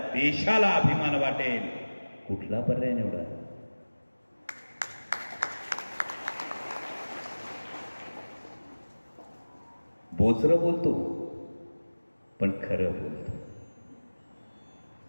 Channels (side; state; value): both; inverted; correlation -1.00